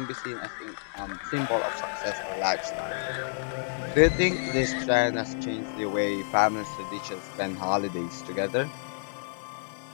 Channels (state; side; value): silent; right; digital silence